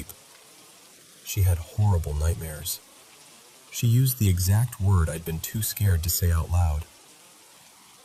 She had horrible nightmares. She used the exact word I'd been too scared to say out loud.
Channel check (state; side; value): identical; both; correlation 1.00